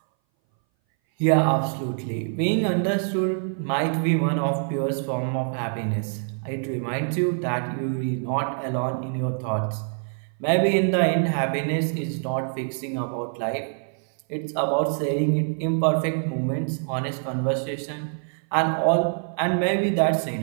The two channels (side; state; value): left; silent; 59 dB below the other